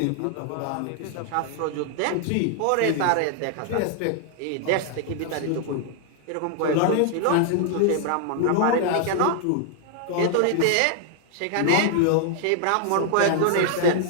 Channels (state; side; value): different; both; correlation 0.00